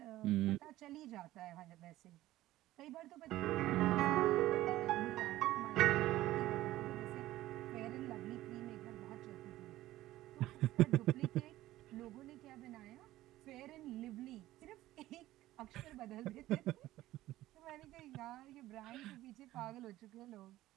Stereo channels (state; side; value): quieter; left; 15.6 dB